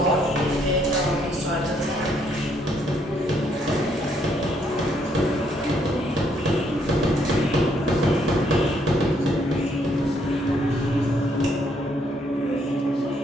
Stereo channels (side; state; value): both; normal; correlation 0.71